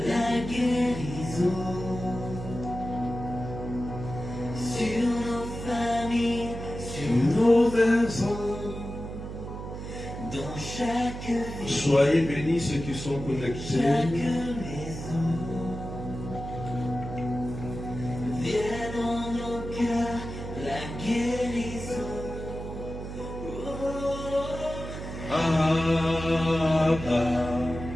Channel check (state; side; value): noise; right; hum, 8 dB below the sound